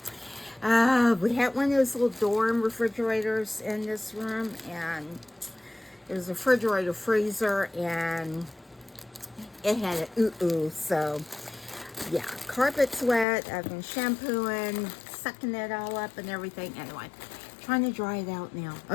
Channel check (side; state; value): right; drops out; at 13.2 s